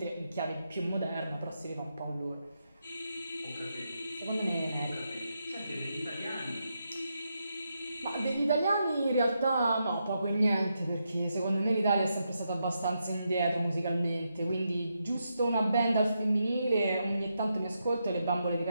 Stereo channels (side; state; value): both; inverted; correlation -0.83